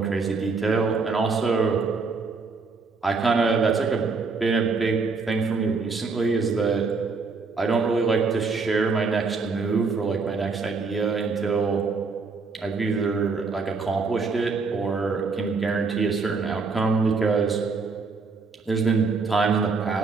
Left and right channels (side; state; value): left; quieter; 4.4 dB